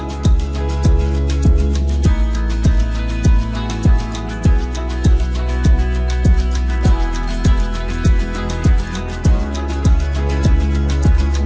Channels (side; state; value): both; identical; correlation 1.00